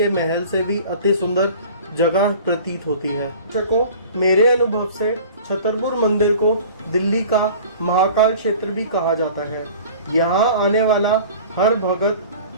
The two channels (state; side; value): inverted; both; correlation -0.43